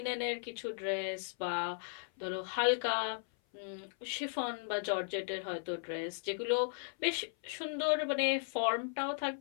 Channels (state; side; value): silent; right; 54 dB below the other